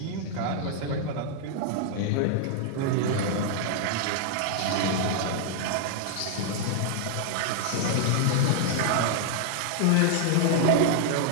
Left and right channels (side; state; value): both; different; correlation -0.01